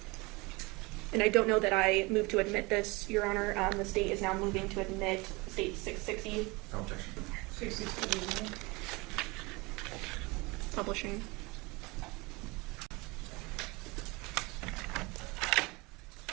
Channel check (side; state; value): left; quieter; 25.1 dB